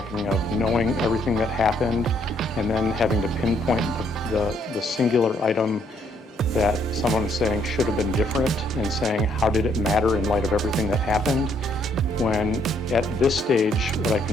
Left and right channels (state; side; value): normal; both; correlation 0.69